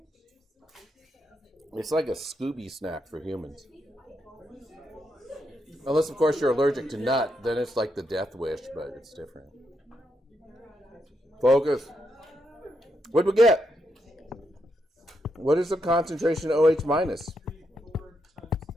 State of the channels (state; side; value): normal; both; correlation 0.81